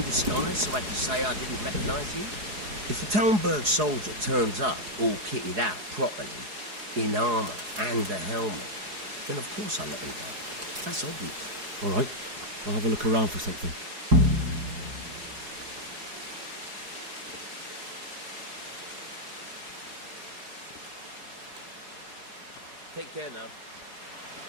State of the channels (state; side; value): late; left; 4.8 ms